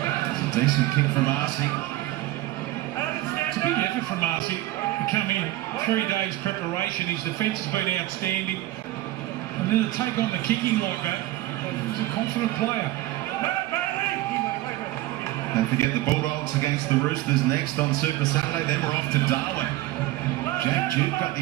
It's a decent kick from Arcee. It's a big effort from Arcee to come in. 3 days preparation. His defence has been outstanding. And then to take on the kicking like that, he's a confident player. Don't forget the Bulldogs against the Roosters next on Super Saturday. Then we're off to Darwin. Jake Duke got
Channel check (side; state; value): left; quieter; 16.6 dB